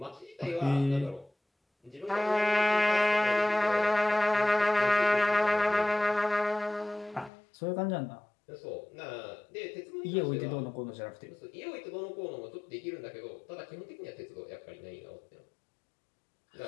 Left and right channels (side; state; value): right; drops out; at 7.3 s